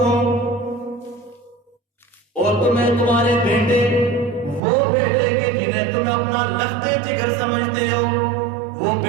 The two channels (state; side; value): drops out; left; at 4.6 s